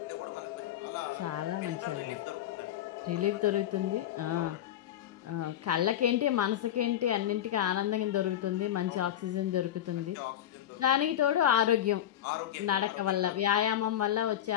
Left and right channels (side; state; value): right; quieter; 11.2 dB